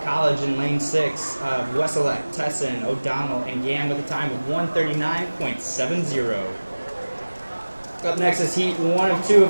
College in lane 6 of Wesselek, Tesson, O'Donnell, and Gam with a time of 139.70. Up next is heat 1 of 2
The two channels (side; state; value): both; inverted; correlation -1.00